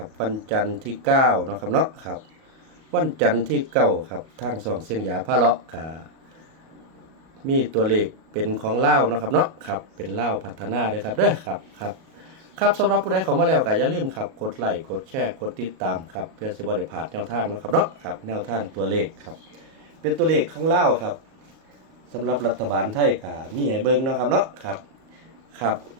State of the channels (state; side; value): late; left; 37 ms